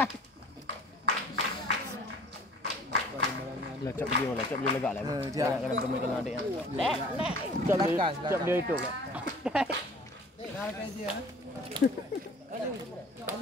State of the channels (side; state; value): both; normal; correlation 0.48